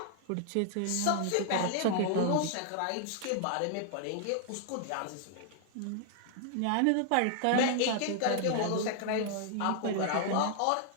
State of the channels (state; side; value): different; both; correlation 0.00